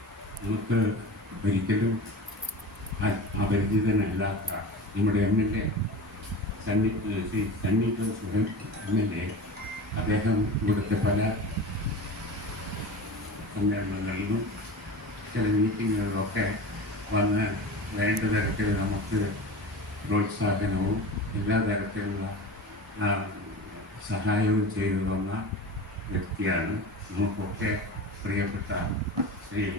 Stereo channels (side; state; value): both; normal; correlation 0.31